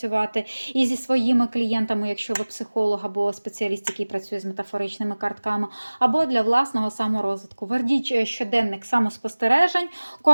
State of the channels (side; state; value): both; inverted; correlation -1.00